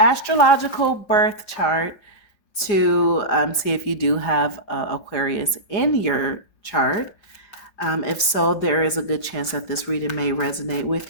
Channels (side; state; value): right; late; 4.9 ms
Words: birth chart to see if you do have Aquarius in your chart. If so, there is a good chance that this reading may resonate